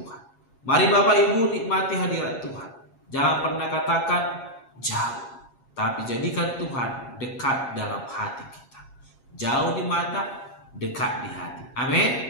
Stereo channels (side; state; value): right; late; 7.3 ms